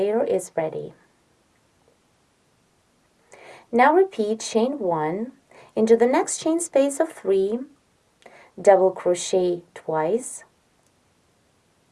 is ready. Now repeat chain 1 into the next chain space of 3, double crochet twice,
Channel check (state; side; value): identical; both; correlation 1.00